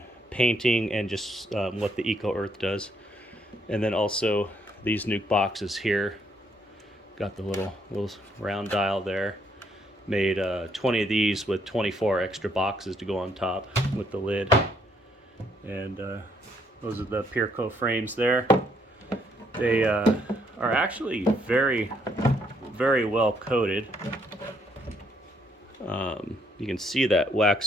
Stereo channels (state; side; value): normal; both; correlation 0.70